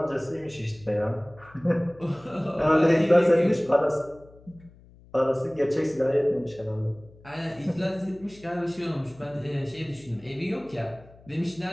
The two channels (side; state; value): left; noise; hum, 24 dB below the sound